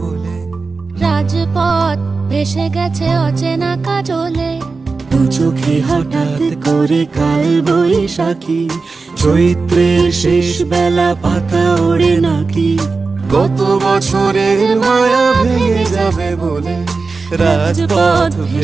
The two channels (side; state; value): left; quieter; 4.2 dB